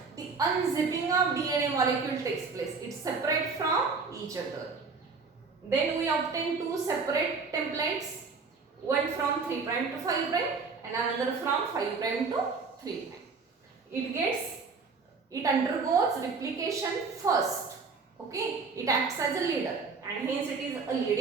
the unzipping of DNA molecule takes place. It's separate from each other. Then we obtain two separate templates, one from 3' to 5' and another from 5' to 3'. It undergoes replication first. Okay, it acts as a leader and hence it is a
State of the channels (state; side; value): quieter; left; 4.7 dB